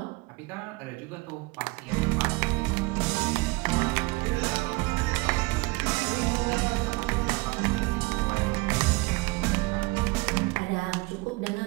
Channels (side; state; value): left; quieter; 24.8 dB